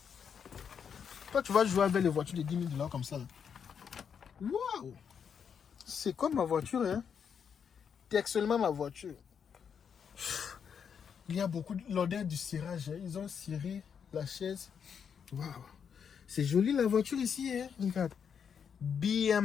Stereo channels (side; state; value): right; quieter; 7.2 dB